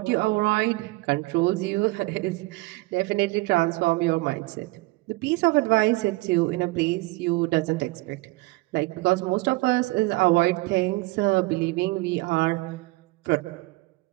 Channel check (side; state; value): left; quieter; 22.5 dB